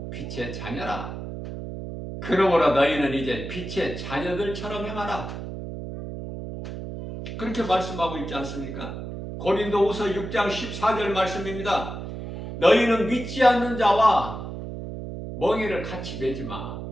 빛의 자녀라. 그러므로 너희는 이제 빛의 자녀들처럼 행하라. 그렇게 말씀하고 있지 않습니까? 고린도후서 6장 14절 말씀입니다. 너희는 믿지 않는 자와 멍에를 같이 매지 마.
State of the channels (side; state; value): right; noise; hum, 8 dB below the sound